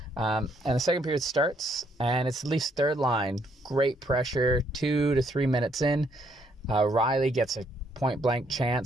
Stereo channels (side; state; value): both; normal; correlation 0.70